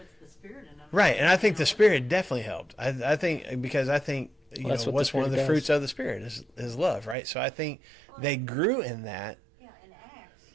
the Spirit in them. Right. And I think the Spirit definitely helped. I think because I think, Well, that's what the what's one of the Spirit fruits does. of the Spirit is love, right? So I think they grew in that. Yeah, in Acts,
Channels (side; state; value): left; drops out; at 7.2 s